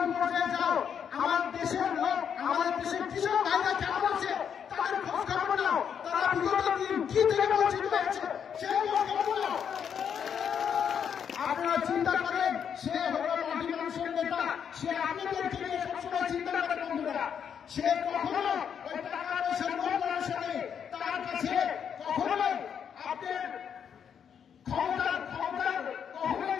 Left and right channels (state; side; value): quieter; right; 7.8 dB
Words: পর্যায়ে যাও, আমার দেশের লোক, আমাদের দেশের কৃষক ভাইরা কেমন আছে তাদের খোঁজ খবর নাও, তারা বিগত দিন কি থেকে বঞ্চিত হয়েছে সেই খোঁজ খবর নাও। আপনারা চিন্তা করেন সে হলো মাটি মানুষের নেতা, সে আপনাদেরকে নিয়ে সবসময় চিন্তা করে বন্ধুরা। সে কখনো ওই টাকা পয়সার লোভ লালসা নেই, তার কাছে কখনোই আপনার ক্ষমতার কখনোই